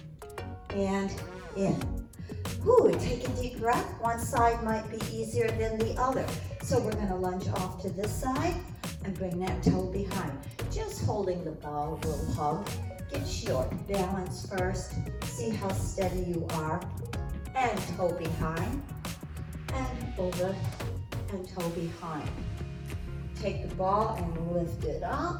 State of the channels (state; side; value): identical; both; correlation 1.00